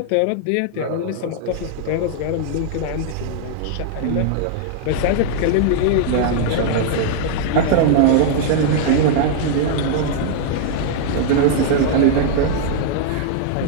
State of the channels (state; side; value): different; both; correlation -0.01